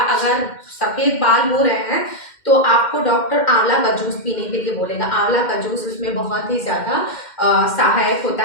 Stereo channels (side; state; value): right; late; 2.1 ms